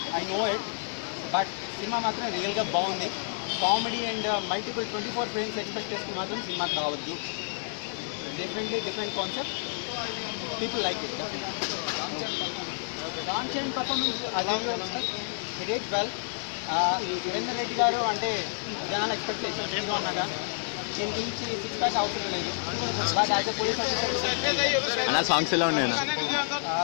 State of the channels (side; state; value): right; silent; digital silence